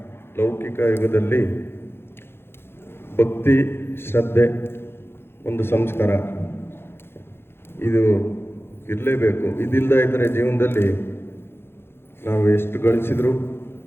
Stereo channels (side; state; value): right; late; 0.11 ms